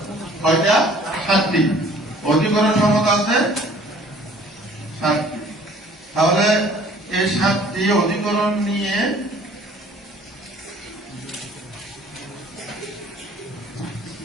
কয়টা? ৭টি। অধিকরণ সম্মত আছে ৭টি। তাহলে এই ৭টি অধিকরণ নিয়ে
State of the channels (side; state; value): both; normal; correlation 0.53